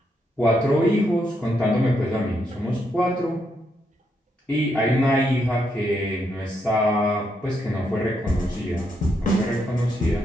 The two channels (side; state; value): both; normal; correlation 0.79